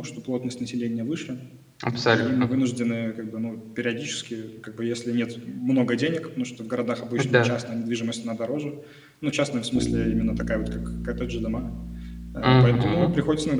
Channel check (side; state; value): both; identical; correlation 1.00